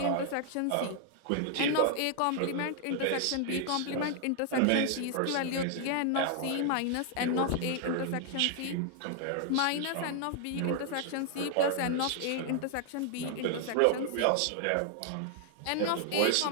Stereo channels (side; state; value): both; different; correlation 0.00